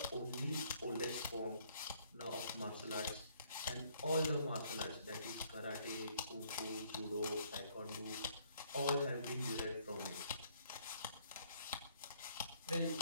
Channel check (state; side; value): inverted; both; correlation -0.65